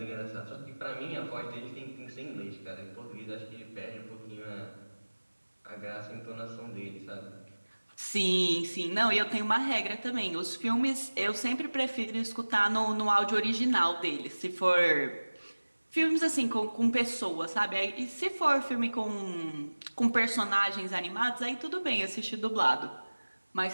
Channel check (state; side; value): inverted; both; correlation -1.00